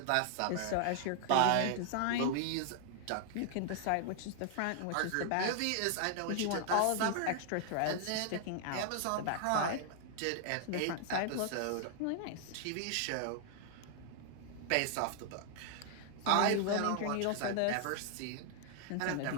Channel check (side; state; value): both; different; correlation -0.01